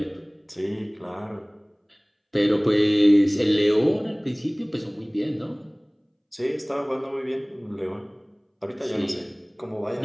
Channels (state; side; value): identical; both; correlation 1.00